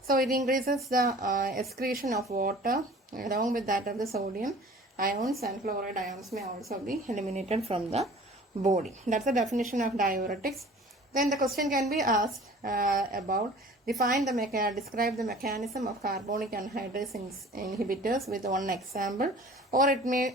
So it increases the excretion of water along with that of the sodium ions and fluoride ions may also be eliminated from the body. That's the definition of diuretics. Then the question can be asked about describe the mechanism of carbonic anhydrase inhibitors with one example, or it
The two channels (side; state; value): both; normal; correlation 0.46